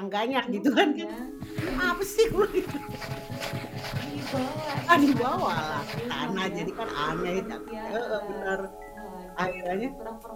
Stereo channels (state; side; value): identical; both; correlation 1.00